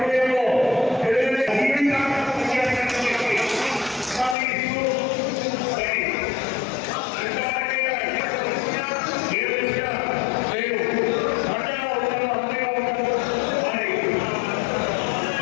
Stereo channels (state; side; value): drops out; right; at 4.4 s